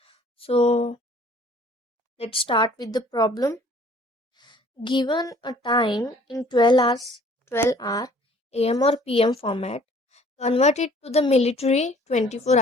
So let's start with the problem. Given a time in 12 hour AM or PM format, convert it to the military 24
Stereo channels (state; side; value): normal; both; correlation 0.54